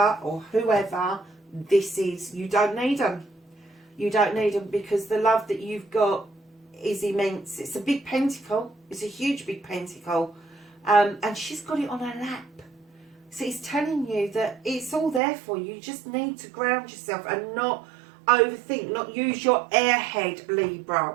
or whoever this is. You don't need them. You don't need them, because the love that you've got is immense. It's a big pentacle. It's a huge big pentacle. And she's got it on her lap. So it's telling you that it's all there for you. You just need to ground yourself and not overthink, not use your airhead, Libra,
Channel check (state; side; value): drops out; left; at 15.2 s